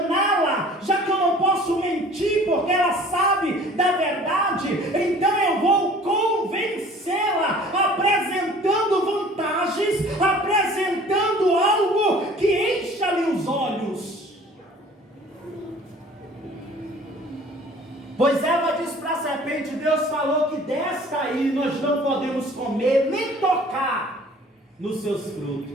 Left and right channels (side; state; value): both; normal; correlation 0.49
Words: já que eu não posso mentir porque ela sabe da verdade, então eu vou convencê-la, apresentando vantagens, apresentando algo que encha-lhe os olhos. Pois Eva disse para a serpente: Deus falou que desta aí nós não podemos comer, nem tocar nos seus